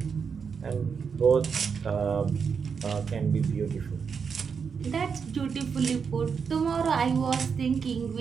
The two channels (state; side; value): quieter; left; 6.1 dB